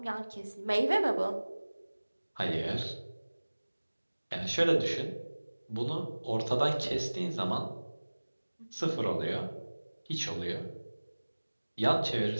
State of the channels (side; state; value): both; inverted; correlation -1.00